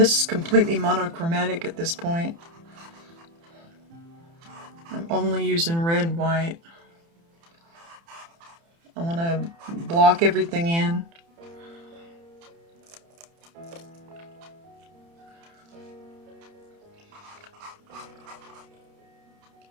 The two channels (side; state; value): left; late; 30 ms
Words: is completely monochromatic at this point. I'm only using red, white. I want to block everything in.